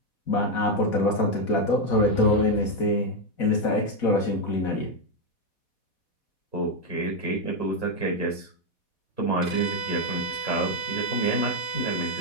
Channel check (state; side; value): late; right; 4.1 ms